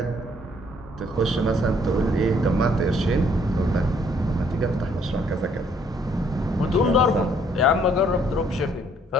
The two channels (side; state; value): both; normal; correlation 0.65